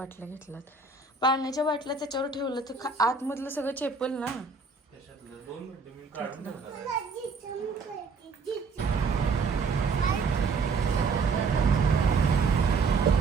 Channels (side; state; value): left; quieter; 4.5 dB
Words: घेतल्यात. पाण्याच्या बाटल्या त्याच्यावर ठेवलं तर आतमधलं सगळं चेपल ना.